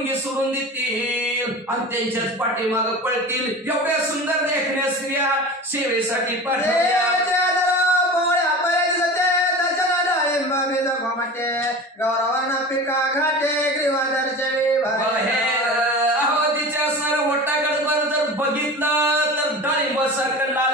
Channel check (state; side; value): normal; both; correlation 0.33